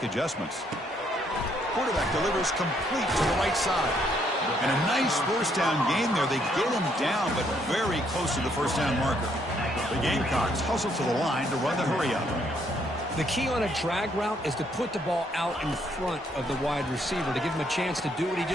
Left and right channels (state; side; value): normal; both; correlation 0.70